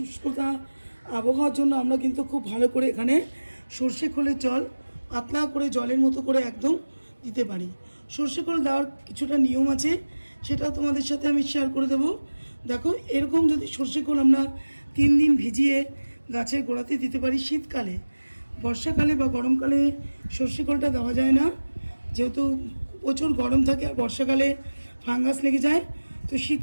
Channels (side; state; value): both; inverted; correlation -1.00